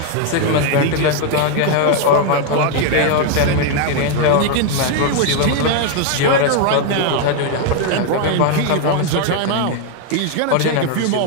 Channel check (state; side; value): different; both; correlation 0.01